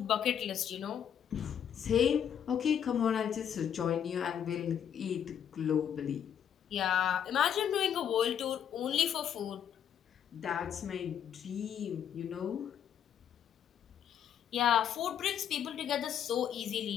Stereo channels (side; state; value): right; quieter; 9.0 dB